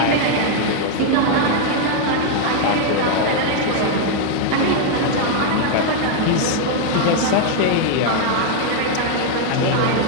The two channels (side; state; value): both; different; correlation 0.00